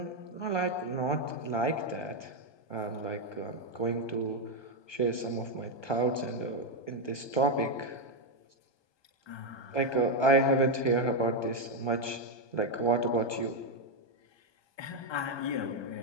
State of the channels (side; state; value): right; late; 1.2 ms